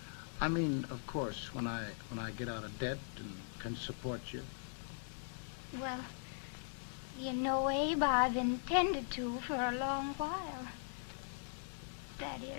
I mean, of course, when I get out of debt and can support you. Well, you know, Abe, I've intended to for a long while. That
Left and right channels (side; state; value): right; silent; 51 dB below the other